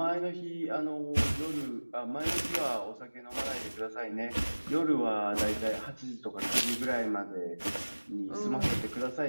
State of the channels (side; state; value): both; inverted; correlation -1.00